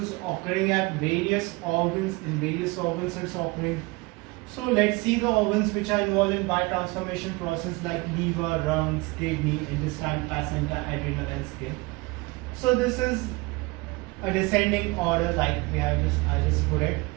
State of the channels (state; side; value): quieter; left; 24.4 dB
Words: is occurring at various organs. In various organs it's occurring. So let's see the organs which are involved in biotransformation process, like liver, lungs, kidney, intestine, placenta, adrenal and skin. So this is a descending order, like I just put it.